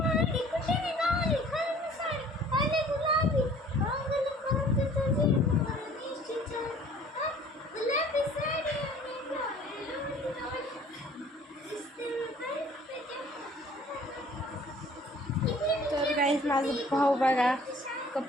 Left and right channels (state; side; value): normal; both; correlation 0.52